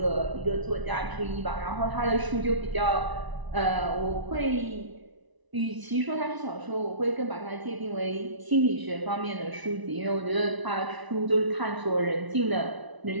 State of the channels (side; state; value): left; late; 1.0 ms